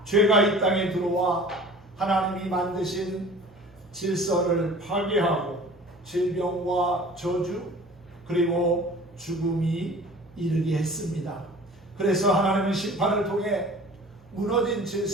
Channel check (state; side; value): normal; both; correlation 0.44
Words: 죄가 이 땅에 들어와 하나님이 만드신 질서를 파괴하고 질병과 저주 그리고 죽음이 이르게 했습니다. 그래서 하나님은 심판을 통해 무너진